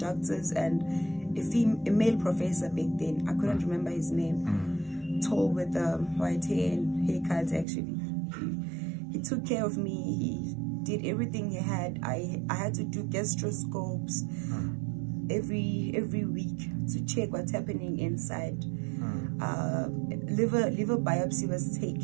and a male professor back then. I couldn't remember his name. Tall with white hair and haircut actually. He took care of me. He did everything he had. I had to do gastroscopes every week to check what's happening inside. Liver biopsy was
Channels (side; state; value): left; drops out; at 7.7 s